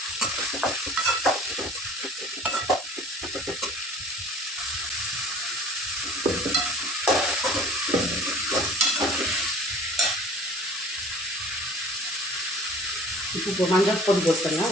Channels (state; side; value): normal; both; correlation 0.47